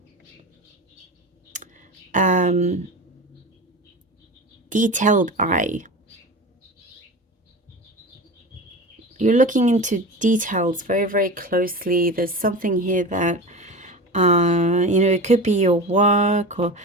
detailed eye. You're looking into details very, very closely. There's something here that, it could be your work, or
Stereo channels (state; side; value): normal; both; correlation 0.29